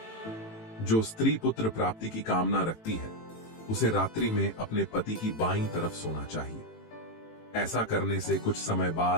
जो स्त्री पुत्र प्राप्ति की कामना रखती है उसे रात्रि में अपने पति की बाईं तरफ सोना चाहिए। ऐसा करने से कुछ समय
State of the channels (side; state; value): right; late; 18 ms